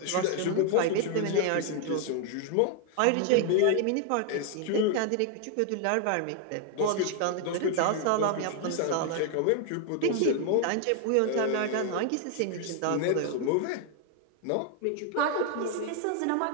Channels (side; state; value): both; different; correlation 0.00